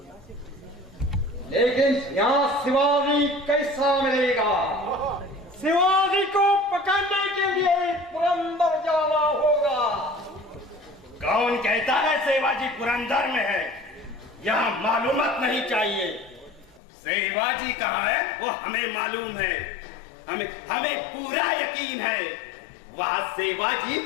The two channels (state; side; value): drops out; right; at 16.8 s